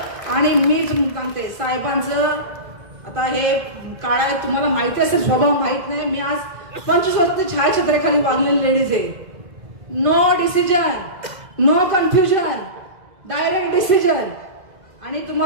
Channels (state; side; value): late; left; 2.5 ms